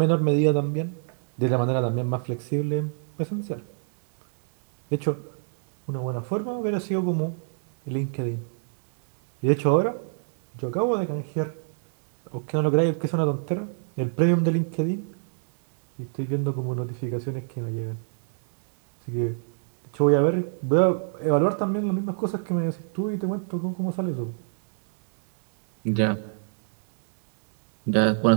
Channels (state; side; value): silent; left; digital silence